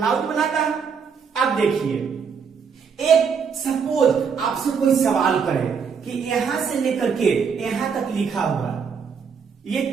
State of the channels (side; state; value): left; quieter; 6.3 dB